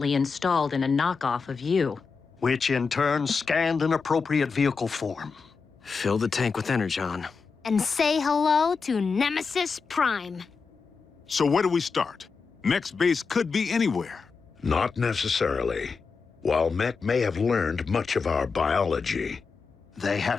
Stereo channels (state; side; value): quieter; right; 5.0 dB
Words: installed in a knockoff of you. Which in turn scanned an appropriate vehicle form. Fill the tank with Energon. And say hello to Nemesis Prime. So where do we start? Mech's base could be anywhere. Not necessarily. While Mech may have learned much of our biology, they